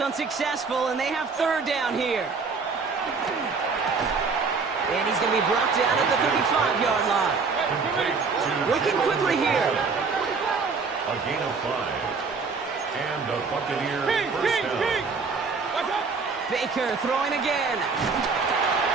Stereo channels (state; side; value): quieter; left; 4.8 dB